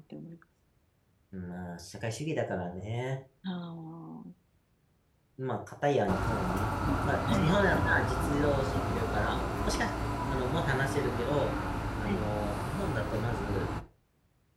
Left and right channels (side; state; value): both; identical; correlation 1.00